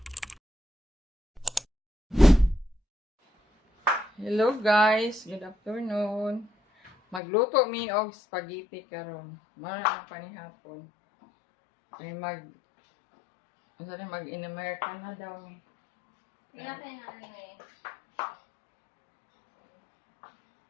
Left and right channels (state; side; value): drops out; right; at 7.2 s